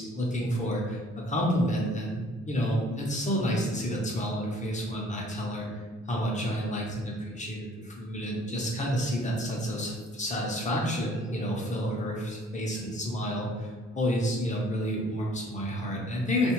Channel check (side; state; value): both; normal; correlation 0.56